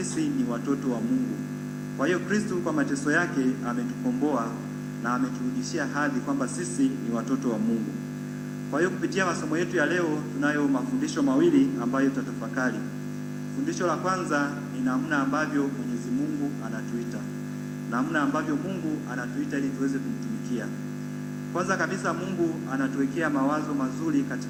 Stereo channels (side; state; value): both; identical; correlation 1.00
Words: ni watoto wa Mungu. Kwa hiyo Kristo kwa mateso yake ametukomboa na ameturudishia hadhi kwamba sisi ni watoto wa Mungu. Kwa hiyo kupitia masomo yetu ya leo tunayo mafundisho mawili ambayo tutatafakari. Fundisho la kwanza ni namna ambavyo Mwenyezi Mungu anatuita. Namna ambavyo Mungu anatuita ili tuweze kumtumikia. Kwanza kabisa Mungu anatuwekea mawazo mazuri